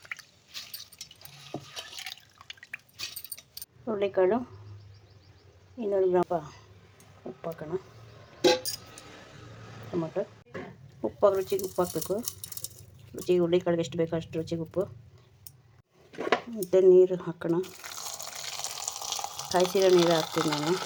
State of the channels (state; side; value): identical; both; correlation 1.00